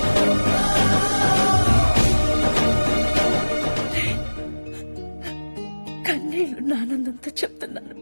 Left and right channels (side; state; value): both; inverted; correlation -1.00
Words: కన్నీళ్లు ఆనందంతో చెప్తున్నాను.